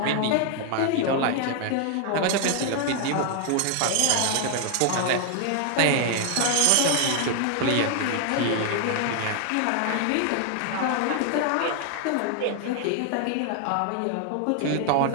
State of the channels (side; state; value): both; different; correlation 0.00